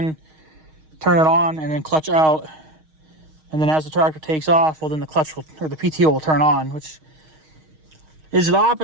turn it on, and then clutch out. And then as the tractor takes off, well, then the clutch will, or the PTO will turn on, which is the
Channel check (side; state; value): left; late; 6.4 ms